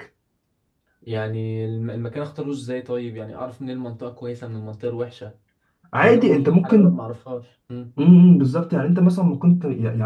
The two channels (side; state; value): both; identical; correlation 1.00